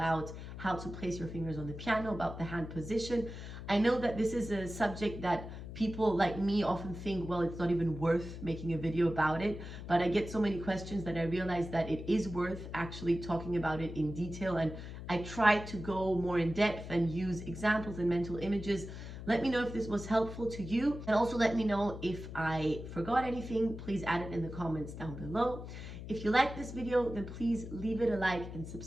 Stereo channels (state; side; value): noise; left; hum, 10 dB below the sound